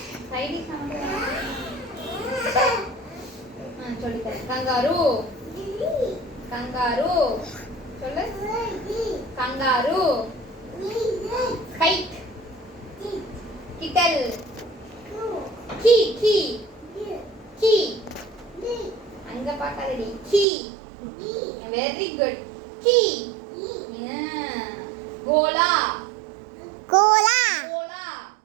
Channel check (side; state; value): left; drops out; at 20.5 s